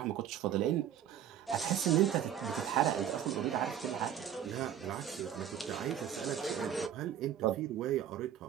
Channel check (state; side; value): quieter; left; 10.0 dB